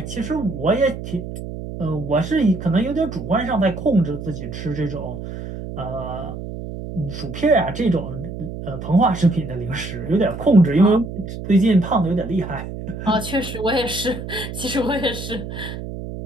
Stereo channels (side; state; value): right; noise; hum, 9 dB below the sound